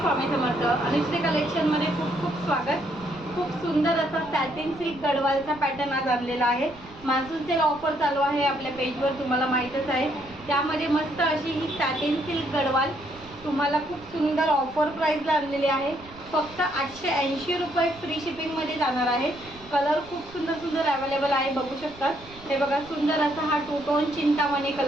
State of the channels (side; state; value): right; noise; rumble, 21 dB below the sound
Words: स्वामी समर्थ. अनुश्री कलेक्शनमध्ये खूप खूप स्वागत. खूप सुंदर असा सॅटिन सिल्क गडवालचा पॅटर्न आज आणलेला आहे. मान्सून सेल ऑफर चालू आहे आपल्या पेजवर, तुम्हाला माहीतच आहे. त्यामध्ये मस्त अशी ही सॅटिन सिल्क गडवाल तुम्हाला खूप सुंदर ऑफर प्राईसला आणलेली आहे. फक्त 880 रुपये फ्री शिपिंगमध्ये जाणार आहे. कलर खूप सुंदर सुंदर अवेलेबल आहे, बघू शकतात. हे बघा, सुंदर असा हा टू टोन चिंतामणी